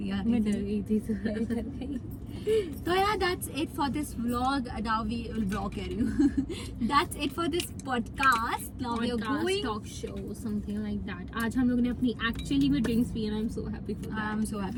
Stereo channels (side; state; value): both; identical; correlation 1.00